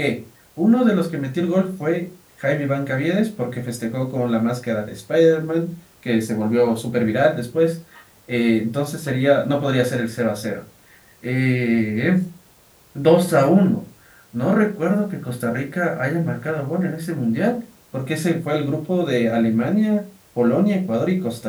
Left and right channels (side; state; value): both; identical; correlation 1.00